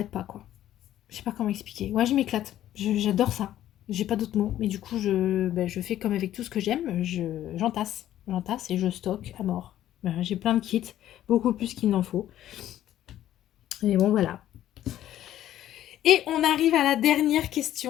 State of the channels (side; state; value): right; quieter; 12.5 dB